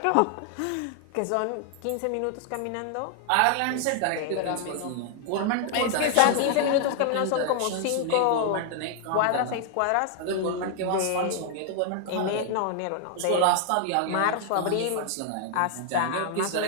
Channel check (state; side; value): different; both; correlation 0.00